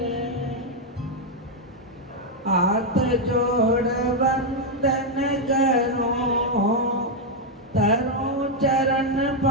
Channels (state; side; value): normal; both; correlation 0.00